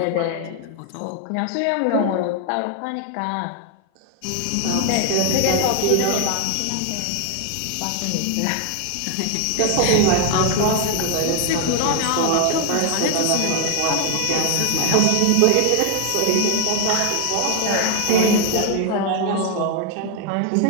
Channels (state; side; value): different; both; correlation 0.00